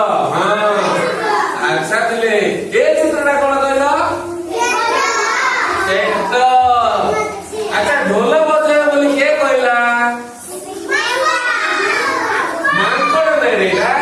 ଆଚ୍ଛା, ଥିଲେ ଏ ଚିତ୍ରଟା କଣ କହିଲ? ଆଚ୍ଛା, ଢୋଲ ବଜେଇବ ବୋଲି କିଏ କହିଲା? ମାଙ୍କଡ ନାଇଁ ରେ।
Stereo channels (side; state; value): both; identical; correlation 1.00